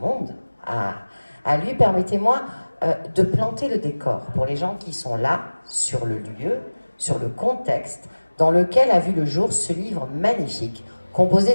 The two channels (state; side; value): inverted; both; correlation -1.00